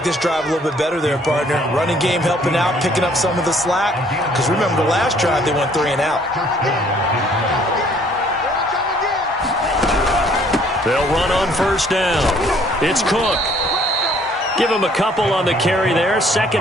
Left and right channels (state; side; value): normal; both; correlation 0.60